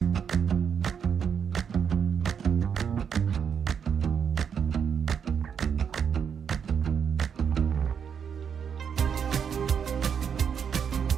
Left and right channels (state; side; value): quieter; left; 7.3 dB